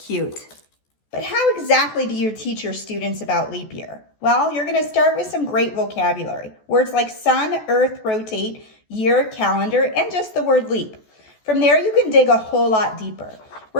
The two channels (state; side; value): late; right; 14 ms